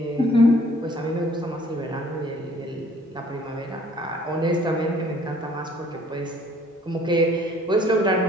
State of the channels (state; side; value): normal; both; correlation 0.57